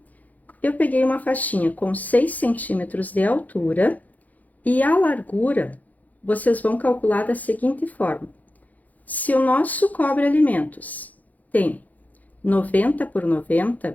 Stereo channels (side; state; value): right; late; 0.079 ms